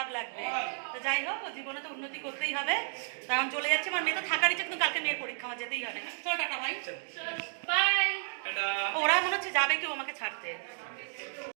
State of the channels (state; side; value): silent; left; digital silence